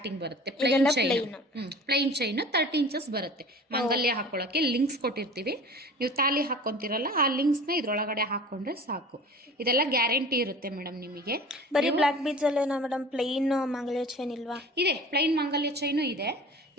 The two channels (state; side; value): normal; both; correlation 0.41